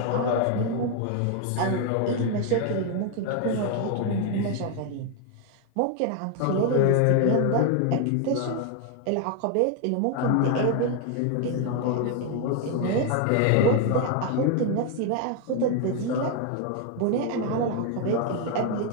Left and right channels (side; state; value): both; different; correlation 0.01